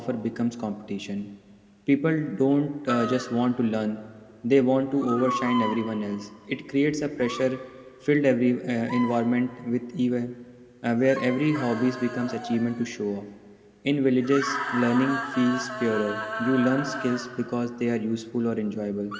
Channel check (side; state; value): both; identical; correlation 1.00